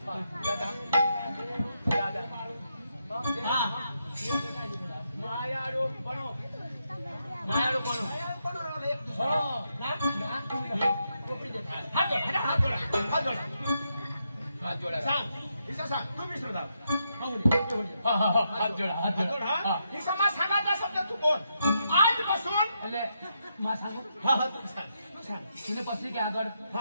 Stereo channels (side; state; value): both; inverted; correlation -0.81